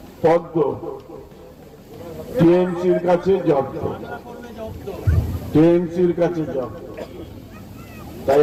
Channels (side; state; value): both; identical; correlation 1.00